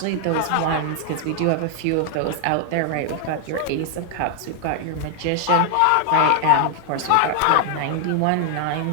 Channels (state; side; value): different; both; correlation 0.00